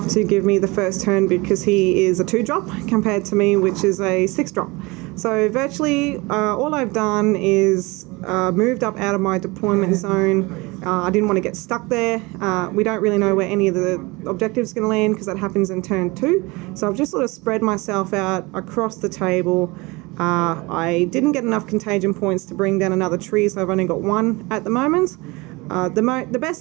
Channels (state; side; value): quieter; left; 24.3 dB